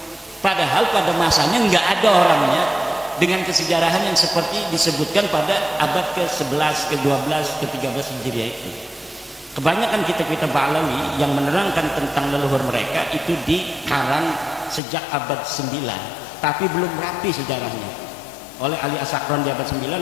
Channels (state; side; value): drops out; right; at 14.8 s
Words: Padahal pada masanya nggak ada orangnya dengan kesejarahan yang seperti disebutkan pada abad ke-11, ke-12, ke-13 Hijriah itu. Kebanyakan kitab-kitab Ba'lawi yang menerangkan tentang leluhur mereka itu dikarang sejak abad 9, tapi belum rapi sejarahnya oleh Ali As-Sakran di abad